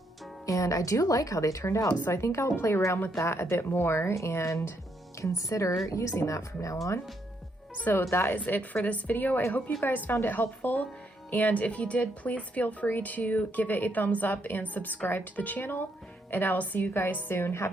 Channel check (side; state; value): both; normal; correlation 0.75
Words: And I do like how they turned out, so I think I'll play around with that a bit more and consider using that from now on. So that is it for this video. I hope you guys found it helpful, and if you did, please feel free to give it a thumbs up and subscribe to the channel, and I will see you guys soon.